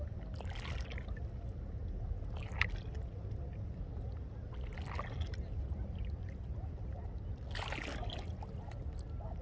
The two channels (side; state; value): both; identical; correlation 1.00